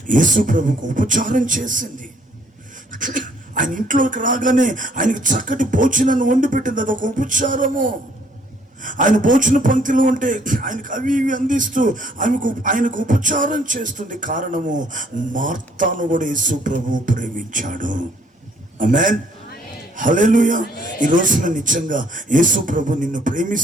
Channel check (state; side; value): normal; both; correlation 0.64